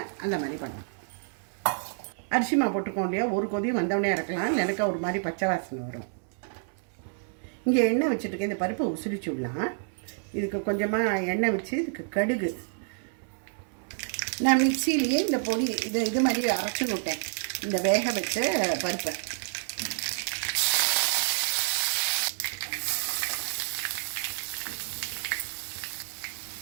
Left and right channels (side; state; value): left; silent; 59 dB below the other